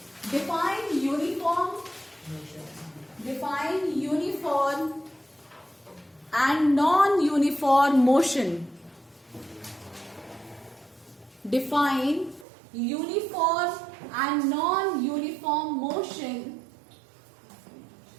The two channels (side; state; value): left; drops out; at 12.5 s